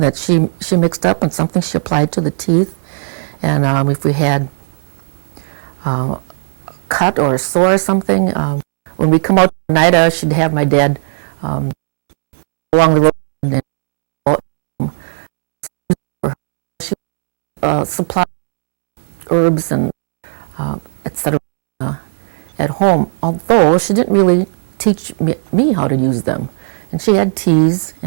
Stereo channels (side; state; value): left; silent; 64 dB below the other